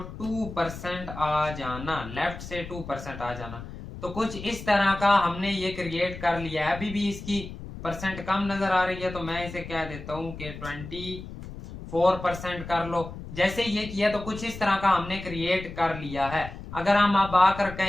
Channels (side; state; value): left; noise; rumble, 11 dB below the sound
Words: 2% आ जाना, लेफ्ट से 2% आ जाना। तो कुछ इस तरह का हमने ये क्रिएट कर लिया है। अभी भी इसकी परसेंट कम नजर आ रही है तो मैं इसे कह देता हूं कि 24% कर लो। जैसे ये किया तो कुछ इस तरह का हमने क्रिएट कर लिया है। अगर हम अब आकर